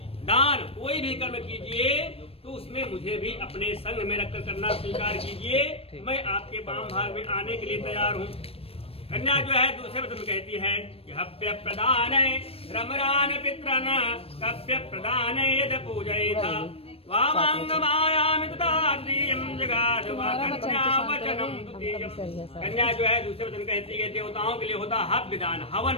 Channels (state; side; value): late; right; 0.28 ms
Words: दान कोई भी कर्म कीजिए तो उसमें मुझे भी अपने संग में रखकर करना स्वीकार कीजिए। मैं आपके वाम भाग में आने के लिए तैयार हूँ। कन्या जो है दूसरे वचन कहती है कि हव्य प्रदान रमरान पितरन कव्य प्रदान यद पूजयेथा वामांगमायामि तथा द्वितीयं जगाद कन्या वचनं द्वितीयं। कन्या जो है दूसरे वचन कहती है देवताओं के लिए होता है हव्य दान हवन